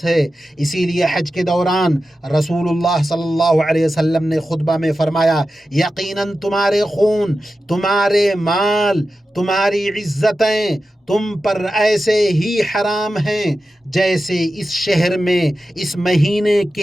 ہے۔ اسی لیے حج کے دوران رسول اللہ صلی اللہ علیہ وسلم نے خطبہ میں فرمایا، یقیناً تمہارے خون، تمہارے مال، تمہاری عزتیں تم پر ایسے ہی حرام ہیں جیسے اس شہر میں اس مہینے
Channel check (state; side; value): normal; both; correlation 0.92